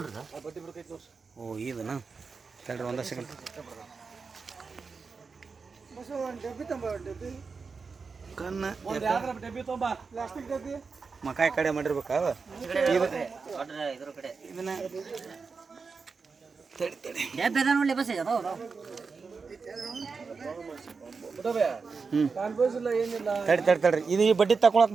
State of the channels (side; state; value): left; quieter; 4.9 dB